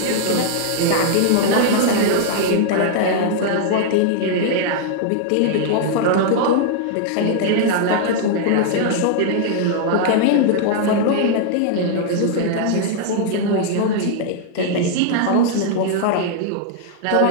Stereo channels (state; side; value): different; both; correlation -0.01